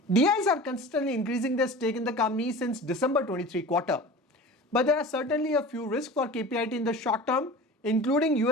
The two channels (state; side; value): normal; both; correlation 0.37